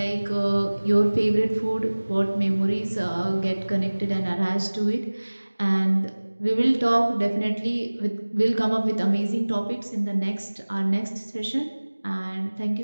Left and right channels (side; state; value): both; inverted; correlation -1.00